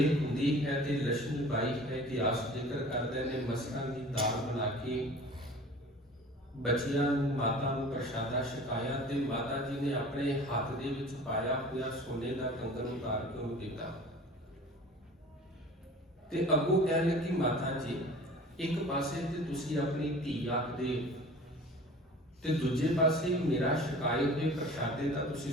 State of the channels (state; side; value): normal; both; correlation 0.42